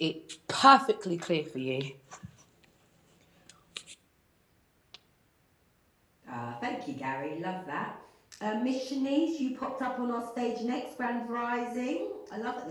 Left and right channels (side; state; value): both; identical; correlation 1.00